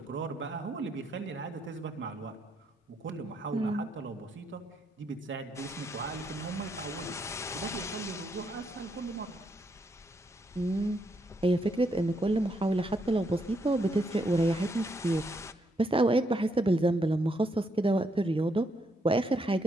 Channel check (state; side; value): normal; both; correlation 0.76